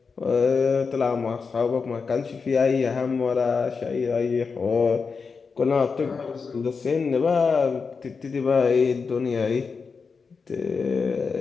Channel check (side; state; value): right; quieter; 5.1 dB